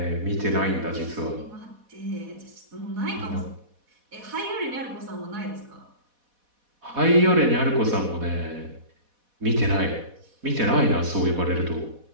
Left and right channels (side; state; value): left; late; 4.1 ms